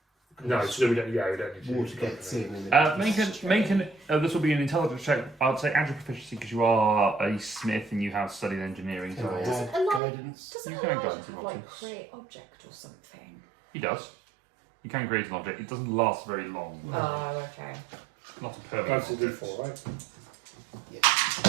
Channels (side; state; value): left; drops out; at 10.0 s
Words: No, so we don't. Yeah, we don't need to. Water gets in. And This will be an intelligence check. I'd say add your proficiency because you are a smith and you have studied engineering. Can I So add Elijah- guidance? Doesn't You can Elijah go have into like options. create object or something? he does. You can create an object. It doesn't last very long. Oh, okay. Not a permanent. That's a object. D4, right? Yeah.